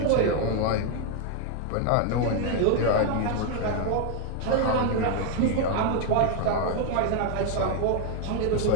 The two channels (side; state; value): both; different; correlation 0.01